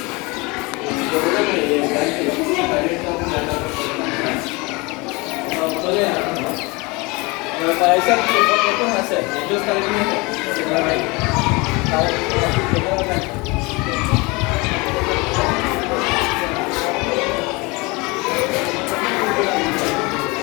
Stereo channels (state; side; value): quieter; right; 25.8 dB